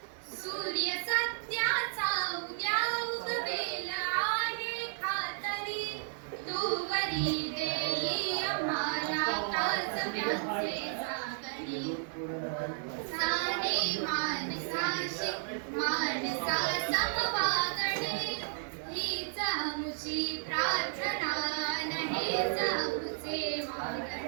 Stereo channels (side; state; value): left; silent; digital silence